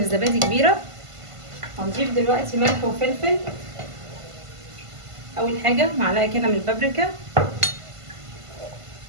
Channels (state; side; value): late; left; 1.5 ms